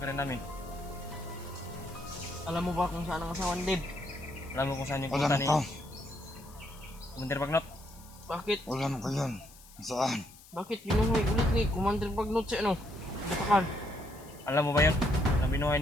rin namin. Alam mo ba kung saan ang asawa ni Dave? Alam mo kung saan yung Alam punta ni ko. Commander Bagnot? Bakit? Alam ko yun. Saan? Bakit binuhay ulit ni Commander Bagnot si ano? Butakal. Alam mo ba yun? Na binuhay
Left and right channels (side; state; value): left; noise; hiss, 22 dB below the sound